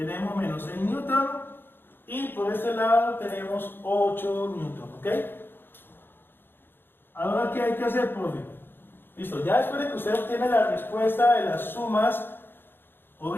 menos 6 newton y por este lado tenemos 8 newton, ¿ok? Ahora, ¿qué hay que hacer, profe? Listo, ya después de que usted obtiene la respuesta de las sumas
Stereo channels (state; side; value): late; right; 0.10 ms